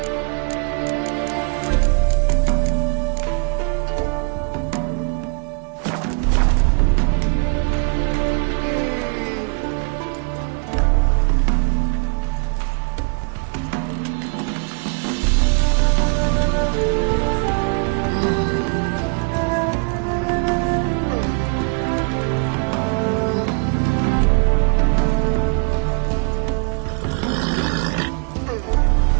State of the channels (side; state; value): left; quieter; 37.4 dB